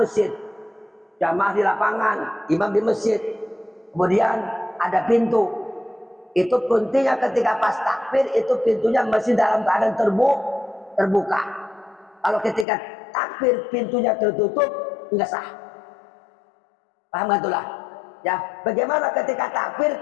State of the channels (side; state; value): right; drops out; at 12.7 s